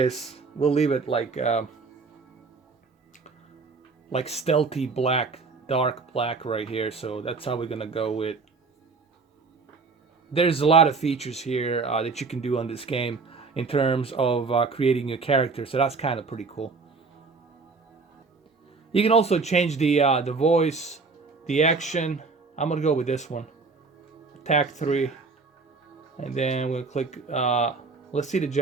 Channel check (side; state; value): left; quieter; 4.3 dB